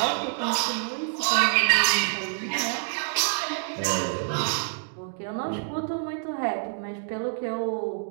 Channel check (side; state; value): left; silent; digital silence